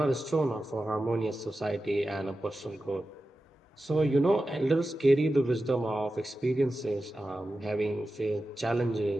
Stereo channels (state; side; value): normal; both; correlation 0.93